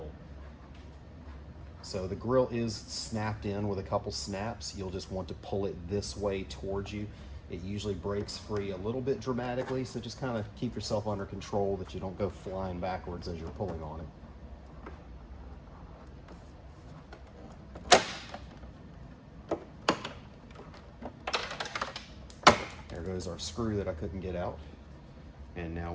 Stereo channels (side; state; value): both; identical; correlation 1.00